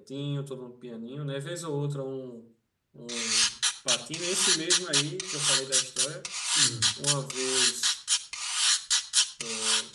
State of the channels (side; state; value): both; identical; correlation 1.00